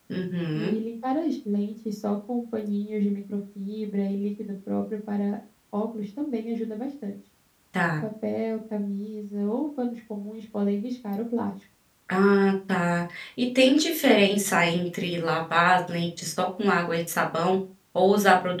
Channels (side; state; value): both; identical; correlation 1.00